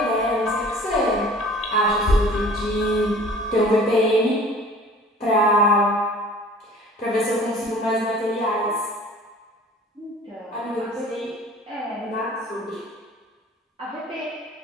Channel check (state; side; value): normal; both; correlation 0.47